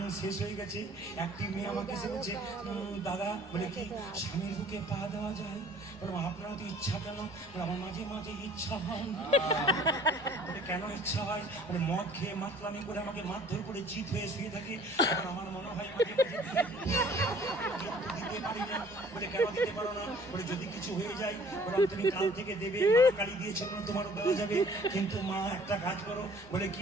শেষ হয়ে গেছে, একটি মেয়ে আমাকে এসে বলছে, দাদা বলে কি স্বামীর বুকে পা দেওয়া যায়? বলে আপনার তো ইচ্ছা কেন? আমার মাঝে মাঝে ইচ্ছা হয়। বলে কেন ইচ্ছা হয়? বলে মদ খেয়ে মাতলামি করে আমাকে মারধর করে চিত হয়ে শুয়ে থাকে, আমার মনে হয় মাঝে মাঝে দিতে পারি না। বলে কেন দিতে পারো না? বলে যদি কিছু হয়ে যায়, বলে তুমি কাল থেকে দেবে, মা কালী দিয়েছে তোমারও দেওয়া যাবে, কিন্তু মা একটা কাজ করো। বলে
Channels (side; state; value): left; noise; rumble, 25 dB below the sound